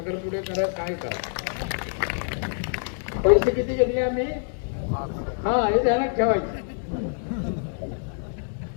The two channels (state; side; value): silent; right; 61 dB below the other